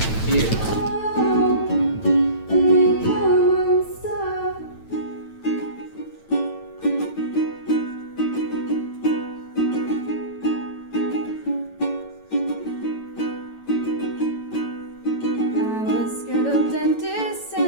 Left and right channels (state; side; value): late; right; 9.0 ms